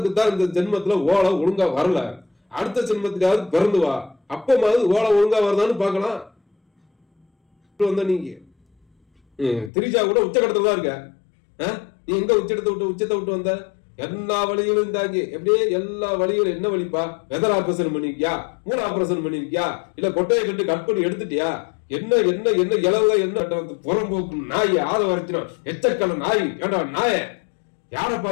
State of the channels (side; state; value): right; drops out; at 9.7 s